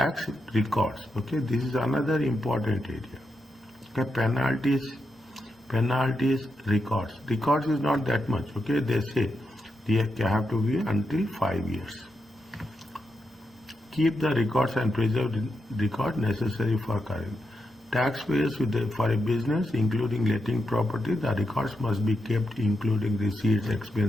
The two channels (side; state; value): both; normal; correlation 0.85